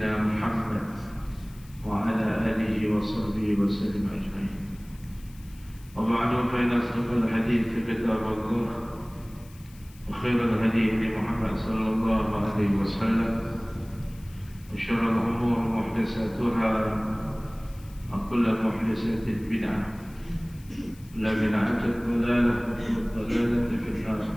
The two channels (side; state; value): left; noise; hiss, 25 dB below the sound